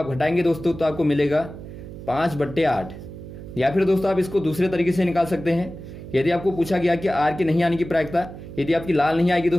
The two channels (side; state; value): right; noise; hum, 13 dB below the sound